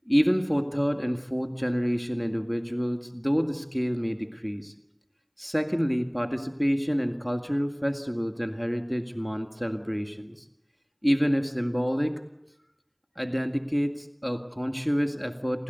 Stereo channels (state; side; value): identical; both; correlation 1.00